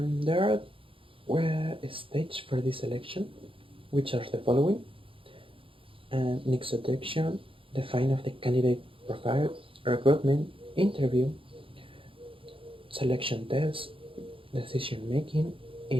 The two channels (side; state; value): left; late; 0.26 ms